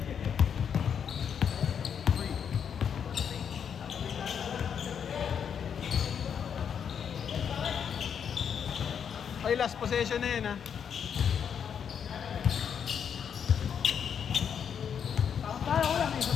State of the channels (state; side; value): quieter; right; 7.7 dB